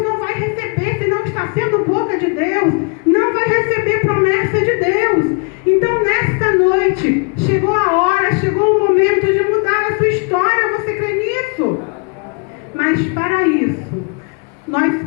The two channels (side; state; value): right; quieter; 34.7 dB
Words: não vai receber. Se não está sendo boca de Deus, não vai receber promessa de Deus. Então, nesta noite, chegou a hora, chegou o momento de mudar a sua história. Você crê nisso? Mas para isso, nós